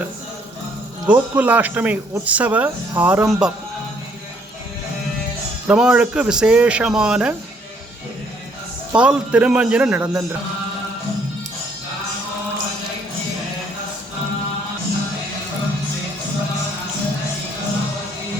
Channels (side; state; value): both; normal; correlation 0.65